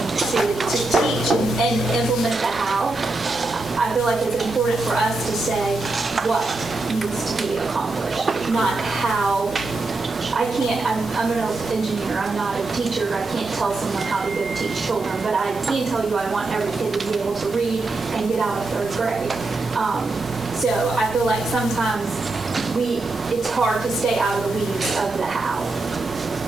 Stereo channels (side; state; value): left; quieter; 3.3 dB